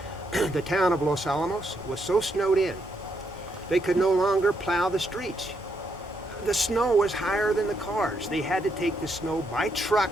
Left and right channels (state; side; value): normal; both; correlation 0.78